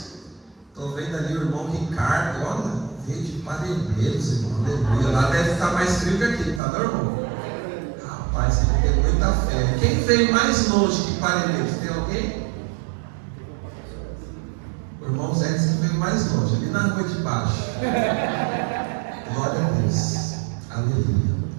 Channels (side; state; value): left; drops out; at 6.6 s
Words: Estou vendo ali o irmão Ricardo, olha, veio de Parelheiros, irmão. Aleluia. Lá deve estar mais frio que aqui, tá, não, irmão? Rapaz, ele tem muita fé. Quem veio mais longe que Parelheiros? Tem alguém? O irmão Zé disse que veio mais longe, ali na rua de baixo. Glória a Deus. Aleluia.